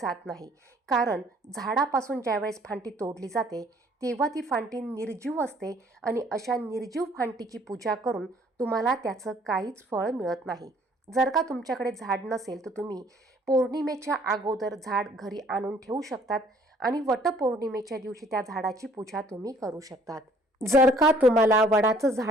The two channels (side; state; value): both; normal; correlation 0.59